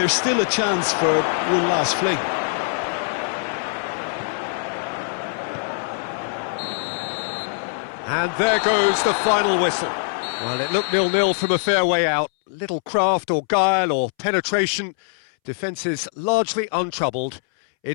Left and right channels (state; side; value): silent; right; 64 dB below the other